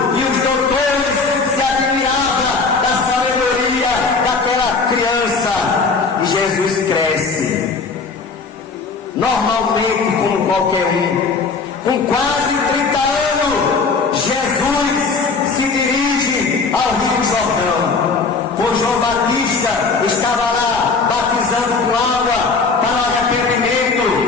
e os doutores se admiravam da sabedoria daquela criança, e Jesus cresce, normalmente como qualquer um, com quase 30 anos, Jesus se dirige ao Rio Jordão, pois João Batista estava lá batizando com água para o arrependimento,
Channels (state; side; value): quieter; right; 4.5 dB